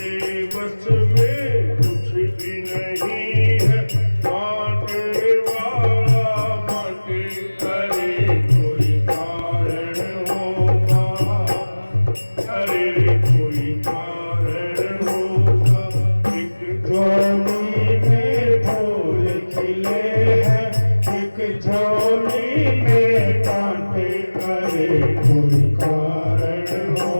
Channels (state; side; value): inverted; both; correlation -1.00